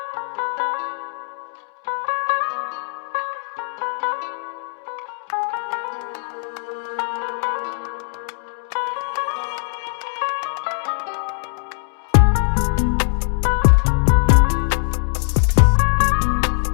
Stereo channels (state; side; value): silent; right; digital silence